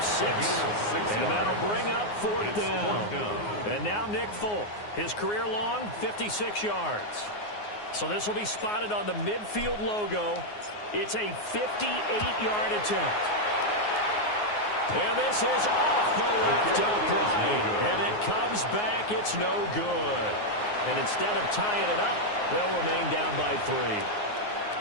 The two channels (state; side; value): late; right; 9.6 ms